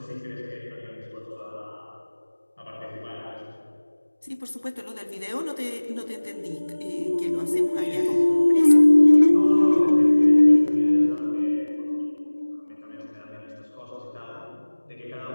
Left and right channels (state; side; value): inverted; both; correlation -1.00